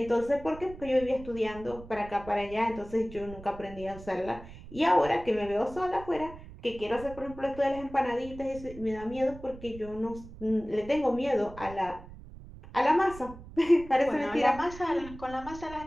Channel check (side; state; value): right; noise; rumble, 16 dB below the sound